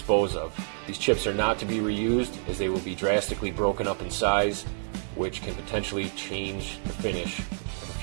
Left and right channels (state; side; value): silent; left; digital silence